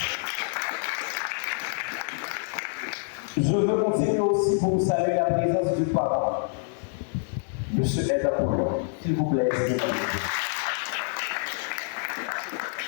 Je veux continuer aussi pour vous saluer la présence du parent, M. Ed Apollon. S'il vous plaît,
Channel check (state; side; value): silent; right; 60 dB below the other